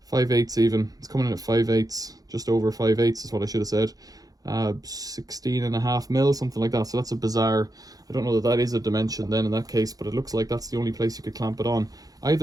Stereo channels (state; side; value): late; left; 0.18 ms